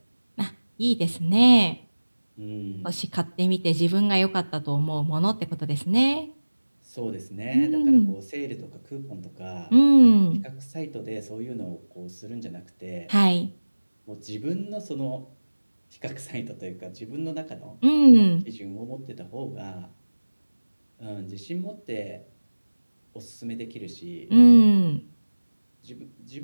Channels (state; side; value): inverted; both; correlation -1.00